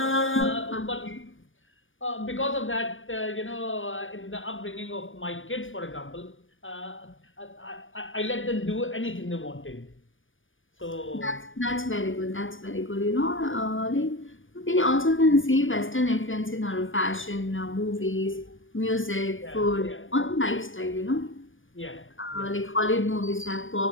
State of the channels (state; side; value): late; right; 0.57 ms